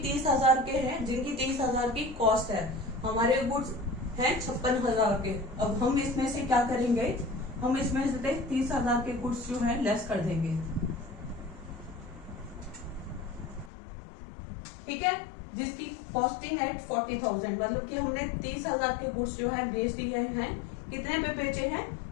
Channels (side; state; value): right; drops out; at 13.7 s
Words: 30,000 के हैं, जिनकी 30,000 की कॉस्ट है। हमारे गुड्स हैं 56,000 के। अब हम इसमें से क्या करेंगे? हम इसमें से 30,000 के गुड्स जो है लेस कर देंगे। ठीक है, जिसकी कॉस्टिंग है 40,000, मतलब कि हमने 30,000 के गुड्स जो है बेच दिए हैं। कितने पे बेचे हैं?